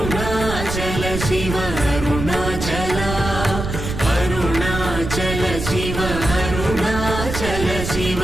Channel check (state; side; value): noise; right; rumble, 6 dB below the sound